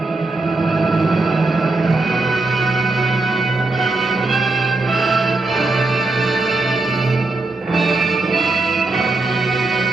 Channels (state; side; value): quieter; left; 3.2 dB